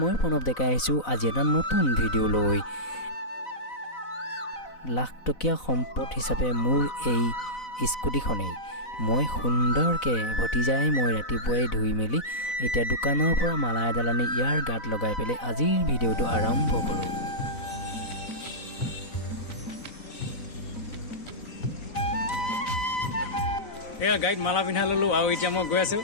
মই প্ৰণৱ ডেকা আহিছোঁ আজি এটা নতুন ভিডিঅ' লৈ লাখ টকীয়া সম্পদ হিচাপে মোৰ এই স্কুটিখনেই মই সুন্দৰকৈ ভতিজাই মই ৰাতিপুৱাই ধুই মেলি এতিয়া দোকানৰ পৰা মালা এডাল আনি ইয়াৰ গাত লগাই পেলাই আজিৰ ভিডিঅ'টো আৰম্ভ কৰোঁ এয়া গাইড মালা পিন্ধা ললো আৰু এতিয়া মই গৈ আছো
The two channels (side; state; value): right; late; 4.0 ms